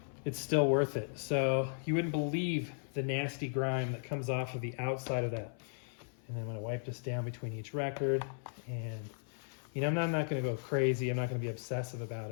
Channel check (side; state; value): right; silent; 54 dB below the other